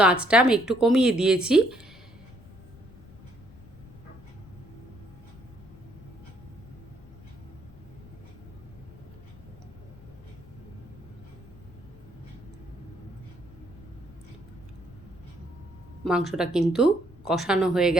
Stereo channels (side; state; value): left; noise; rumble, 20 dB below the sound